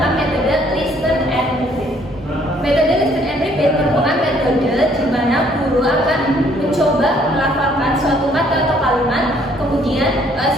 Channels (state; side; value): normal; both; correlation 0.63